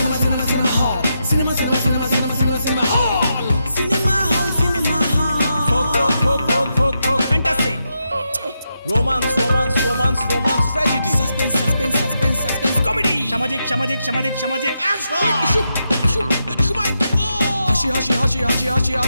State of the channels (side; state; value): both; inverted; correlation -0.84